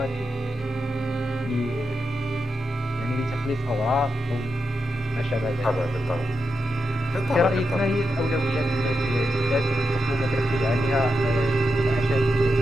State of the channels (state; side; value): normal; both; correlation 0.87